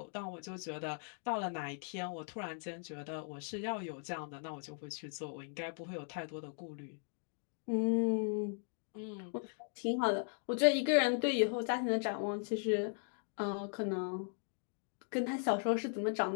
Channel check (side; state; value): right; silent; 52 dB below the other